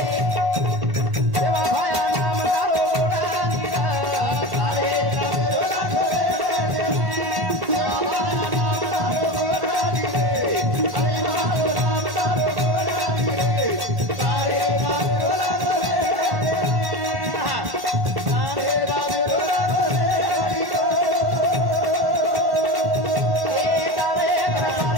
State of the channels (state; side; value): late; left; 1.4 ms